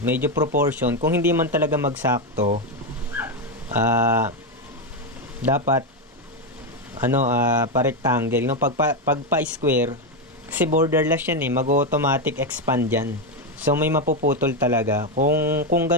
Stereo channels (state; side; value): normal; both; correlation 0.08